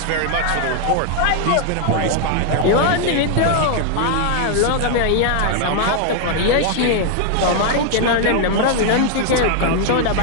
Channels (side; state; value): both; different; correlation 0.00